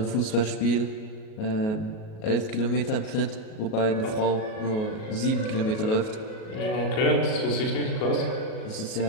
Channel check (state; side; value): late; right; 37 ms